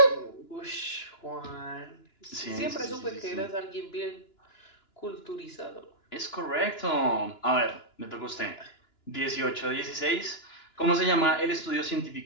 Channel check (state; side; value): late; right; 2.9 ms